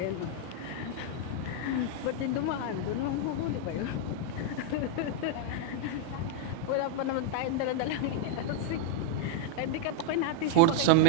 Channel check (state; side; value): different; both; correlation 0.00